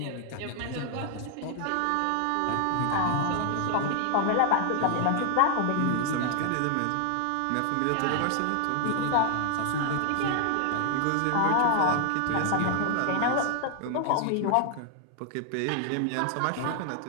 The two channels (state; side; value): different; both; correlation 0.00